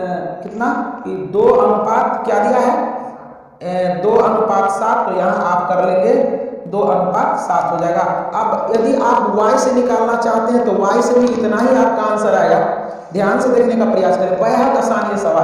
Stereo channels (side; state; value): both; identical; correlation 1.00